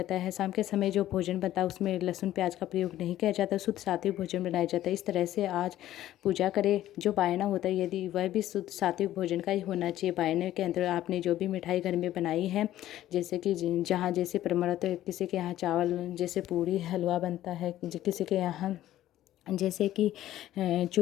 है। शाम के समय जो भोजन बनता है उसमें लहसुन प्याज का प्रयोग नहीं किया जाता, शुद्ध सात्विक भोजन बनाया जाता है। इस तरह से आज पूजा करें। जो बायना होता है यदि वह भी शुद्ध सात्विक भोजन का ही होना चाहिए। बायने के अंदर आपने जो भी मिठाई घर में बनाई है, जैसे कि जहाँ जैसे परम्परा है, किसी के यहाँ चावल जैसे पूड़ी हलवा बनता है, किसी के यहाँ जैसे कि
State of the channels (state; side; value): quieter; right; 13.5 dB